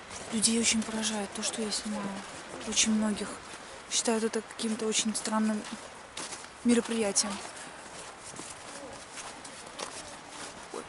Людей очень поражает то, что я снимаю. Очень многих считают это каким-то очень странным мероприятием.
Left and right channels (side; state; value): both; identical; correlation 1.00